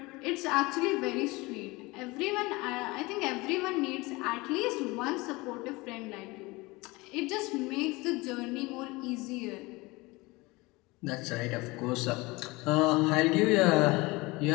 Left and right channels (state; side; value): quieter; right; 23.1 dB